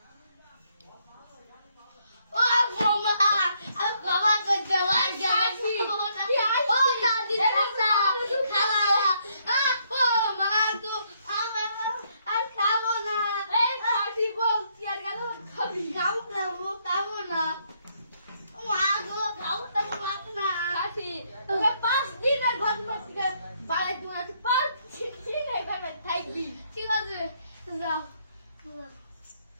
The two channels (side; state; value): both; inverted; correlation -0.72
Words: ও মামা আমি বাবা করতে পারি ও দাদি খালা ও মা তো আমি আর খাবো না এই খাসি বলছি আর গেল খাবি খাবো না মা গো খাবো না খাসি তোকে 5 দিনের ঘটনা থেকে বাড়াই দিন আছে 5 দিন এভাবে থাকবি। ঠিক আছে যাও